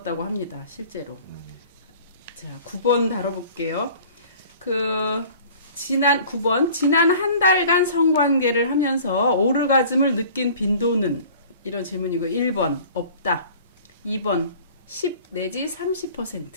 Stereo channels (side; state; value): both; inverted; correlation -0.47